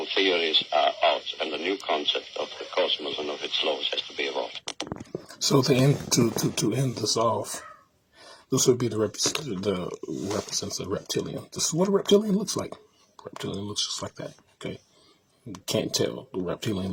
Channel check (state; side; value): identical; both; correlation 1.00